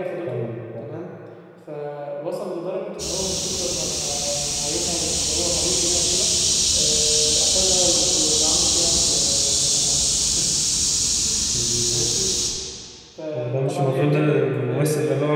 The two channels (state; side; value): identical; both; correlation 1.00